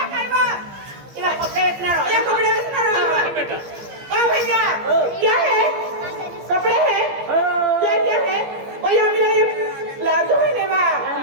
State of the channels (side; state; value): left; late; 15 ms